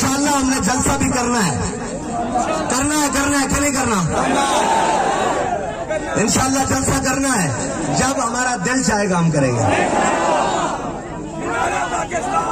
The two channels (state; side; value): identical; both; correlation 1.00